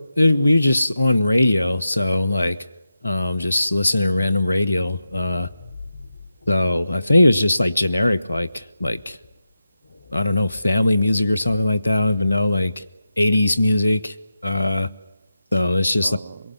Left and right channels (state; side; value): inverted; both; correlation -0.91